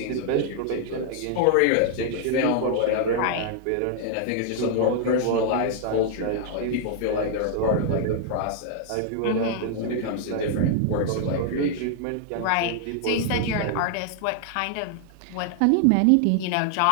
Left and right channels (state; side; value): different; both; correlation -0.01